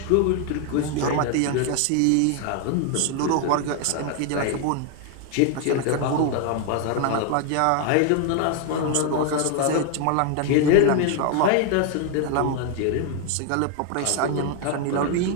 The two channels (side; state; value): both; different; correlation 0.01